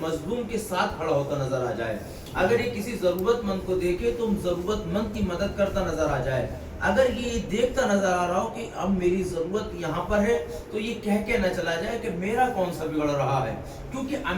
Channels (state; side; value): identical; both; correlation 1.00